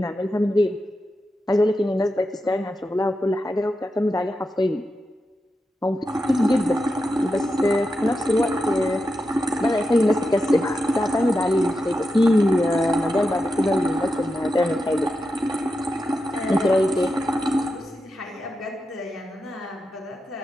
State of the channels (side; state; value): both; normal; correlation 0.89